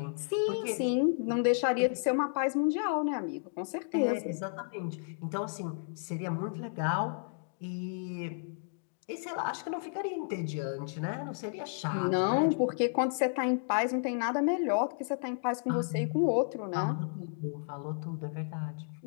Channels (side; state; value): right; silent; digital silence